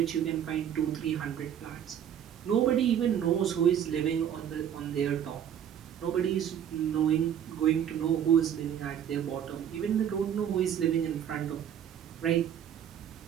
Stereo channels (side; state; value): left; quieter; 9.3 dB